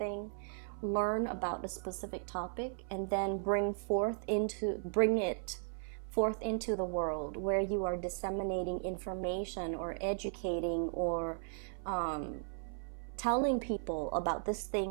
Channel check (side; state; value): left; silent; 53 dB below the other